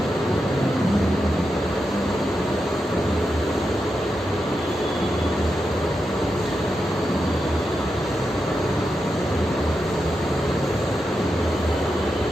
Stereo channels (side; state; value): both; normal; correlation 0.87